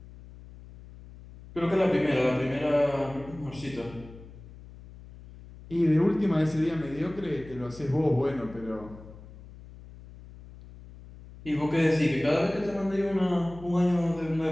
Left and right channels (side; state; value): left; noise; hum, 18 dB below the sound